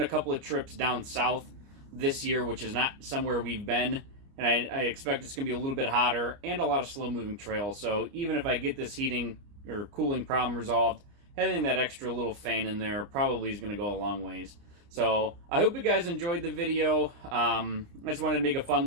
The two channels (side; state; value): left; late; 29 ms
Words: a couple of trips down south this year, which is not somewhere we've been, and I expect it's going to be a little bit hotter and a lot of slow-moving trails. So even if I get this heating or cooling problem resolved, having that extra little fan in there probably is going to go a long ways. So I hope you guys enjoyed the video. I just wanted to make a fun